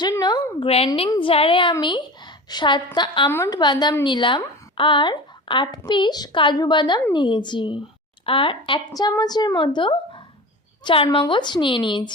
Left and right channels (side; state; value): both; normal; correlation 0.32